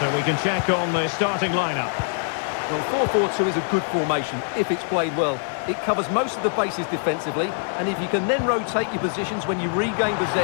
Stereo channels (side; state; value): right; silent; 63 dB below the other